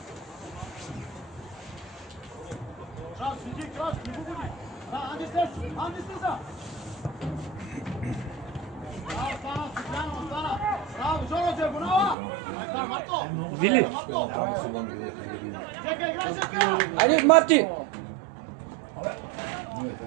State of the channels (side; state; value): left; drops out; at 12.2 s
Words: Вили! Айде, Марти!